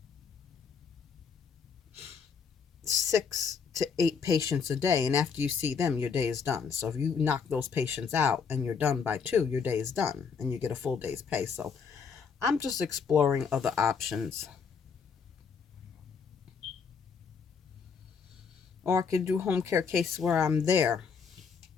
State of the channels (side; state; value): right; quieter; 6.0 dB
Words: 6 to 8 patients a day. And after you see them, your day is done. So if you knock those patients out and you're done by 2, your day is done and you get a full day's pay. So I'm just exploring other options. Or I could do home care case where I'm there